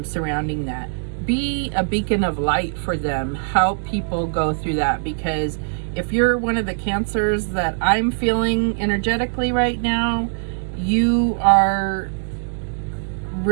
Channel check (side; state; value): left; silent; digital silence